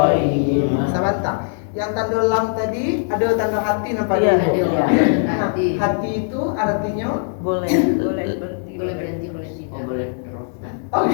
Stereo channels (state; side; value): silent; right; 66 dB below the other